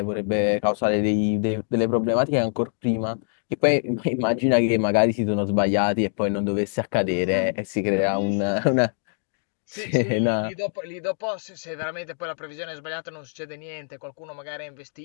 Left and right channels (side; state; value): right; silent; digital silence